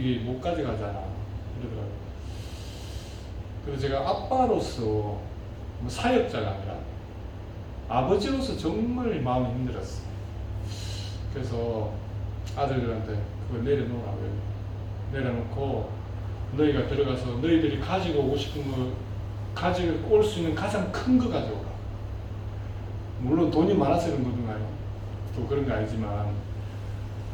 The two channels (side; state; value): both; identical; correlation 1.00